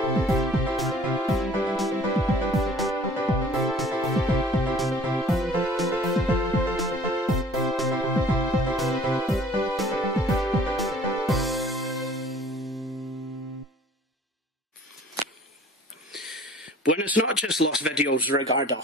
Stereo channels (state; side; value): normal; both; correlation 0.51